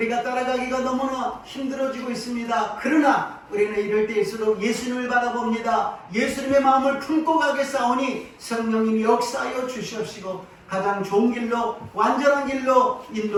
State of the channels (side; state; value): both; identical; correlation 1.00